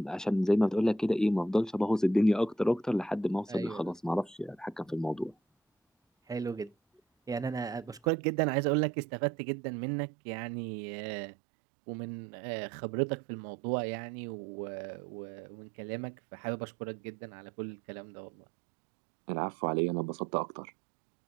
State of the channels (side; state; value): left; drops out; at 8.1 s